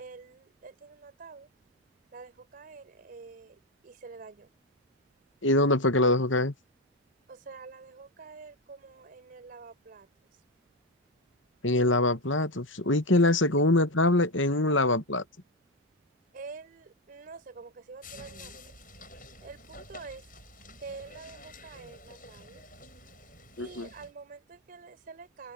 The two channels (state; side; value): normal; both; correlation 0.10